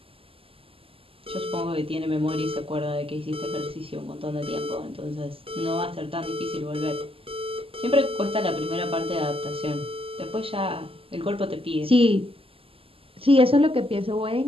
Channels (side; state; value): left; late; 0.27 ms